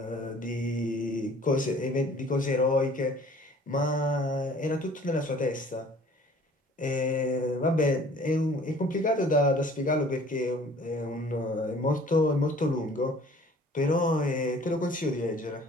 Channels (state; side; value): normal; both; correlation 0.51